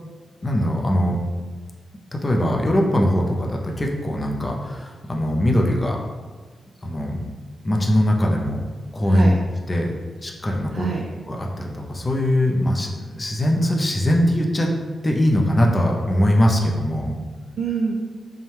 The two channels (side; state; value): both; normal; correlation 0.91